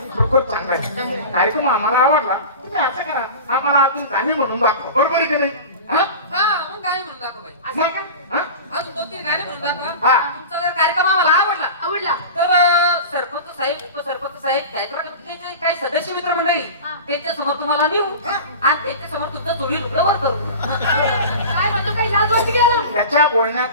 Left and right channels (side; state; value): both; inverted; correlation -0.32